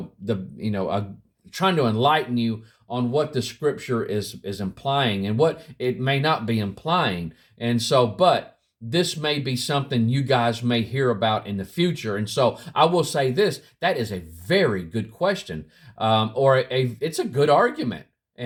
trying to enlighten you on what the scripture is implying and what it may not be implying. And so, but this may be something you guys may hear about in the future. And so I will say this, that is a very good question, it's a good argument.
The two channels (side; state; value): both; identical; correlation 1.00